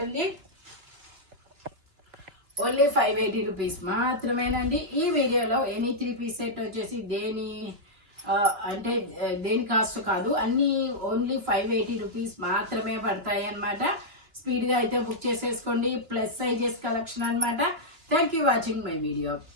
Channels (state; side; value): late; left; 2.9 ms